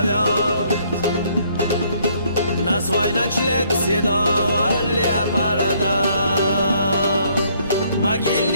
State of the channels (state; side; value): inverted; both; correlation -0.66